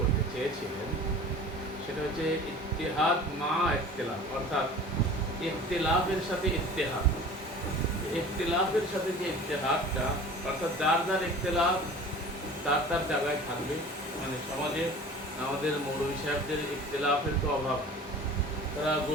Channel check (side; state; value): both; normal; correlation 0.42